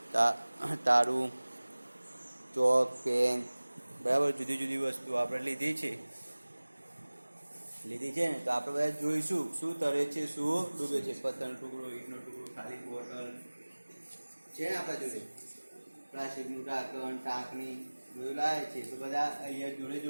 તારું, ચોક, પેન, બરાબર જુદી જુદી વસ્તુ આપણે લીધી છે ને. તો આપણે બધા જોઈશું શું તરે છે શું ડૂબે છે. પથ્થરનો ટુકડો, ઈંટનો ટુકડો, ખાલી બોટલ છે ને આપણા જોડે, પ્લાસ્ટિકનું ઢાંકણ, ટાંકણી બધું લાવે છે. તો બધા અહીંયા જોડે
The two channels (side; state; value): both; inverted; correlation -1.00